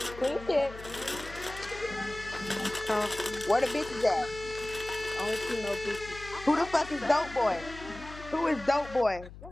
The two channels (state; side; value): noise; left; hum, 15 dB below the sound